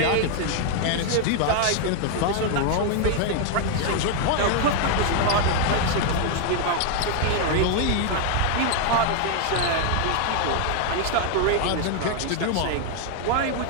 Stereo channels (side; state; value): both; different; correlation 0.00